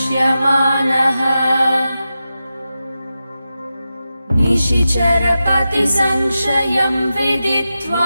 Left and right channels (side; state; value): both; inverted; correlation -0.92